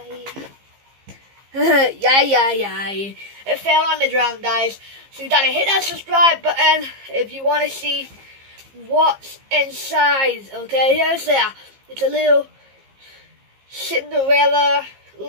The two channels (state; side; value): late; left; 15 ms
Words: Yay. It fell on the ground, guys. So you gotta hit that subscribe button if you want to see what's inside. Okay, here's there. It's a little Cinderella